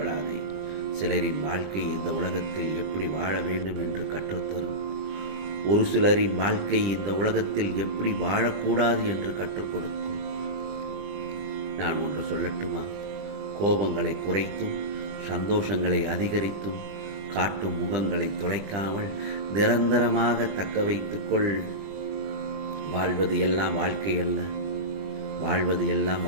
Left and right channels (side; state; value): left; late; 20 ms